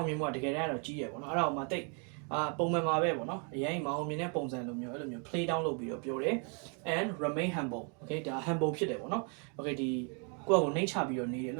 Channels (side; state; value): left; quieter; 38.4 dB